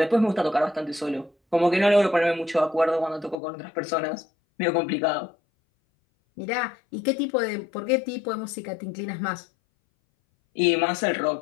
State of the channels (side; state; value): right; drops out; at 3.4 s